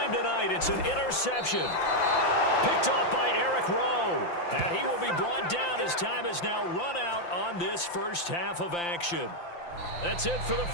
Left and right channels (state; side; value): late; right; 5.8 ms